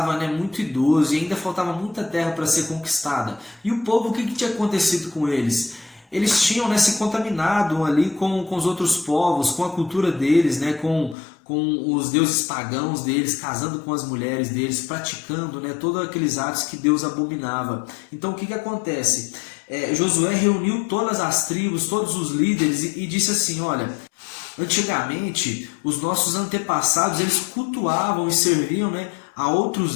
né, muito idoso e ainda faltava muita terra para ser conquistada. E o povo, o que tinha acontecido com eles? Eles tinham, né, se contaminado ali com os outros povos, com a cultura deles, né, com os deuses pagãos deles, casando com as mulheres deles, praticando, né, todos aqueles atos que Deus abominava. Então o que acontece? Josué reuniu todas as tribos, todos os líderes e disse assim: olha, Antigamente, os nossos antepassados, eles cultuavam e serviam, né, a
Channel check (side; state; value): right; drops out; at 11.2 s